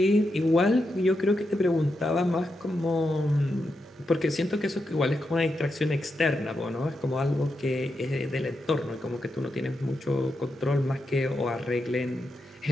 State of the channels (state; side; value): normal; both; correlation 0.86